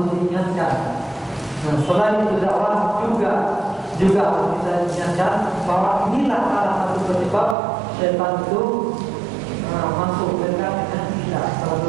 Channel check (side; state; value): left; drops out; at 7.6 s